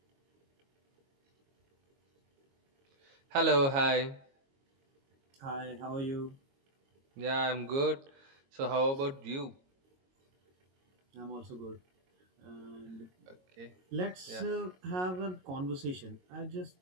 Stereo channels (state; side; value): late; left; 22 ms